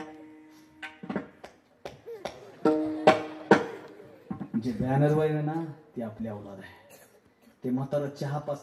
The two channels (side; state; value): both; identical; correlation 1.00